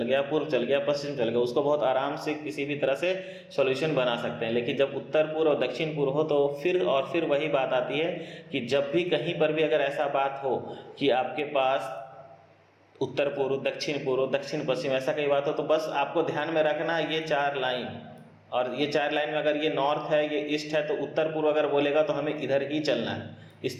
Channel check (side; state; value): both; identical; correlation 1.00